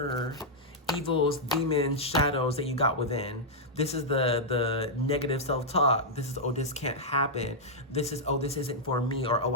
evils, demons, shadows that you got within. This is the negative self-talk. This is, oh, this can't happen. This is, oh, this isn't for me, or, oh,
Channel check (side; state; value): both; normal; correlation -0.06